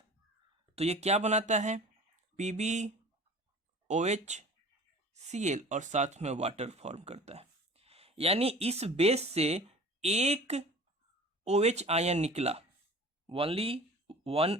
तो ये क्या बनाता है, PbOHCl और साथ में वाटर फॉर्म करता है। यानी इस बेस से एक OH आयन निकला, ओनली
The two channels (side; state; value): both; normal; correlation 0.42